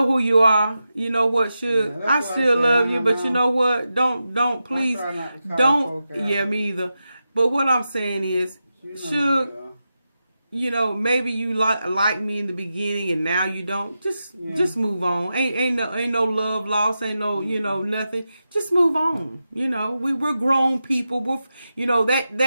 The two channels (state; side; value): inverted; both; correlation -0.90